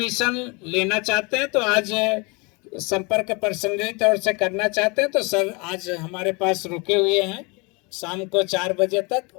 लेना चाहते हैं तो आज संपर्क पर्सनली तौर से करना चाहते हैं तो सर आज हमारे पास रुके हुए हैं, शाम को 4 बजे तक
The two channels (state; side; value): quieter; right; 29.4 dB